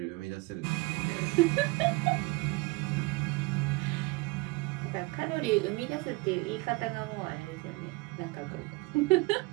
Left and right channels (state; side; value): quieter; left; 24.6 dB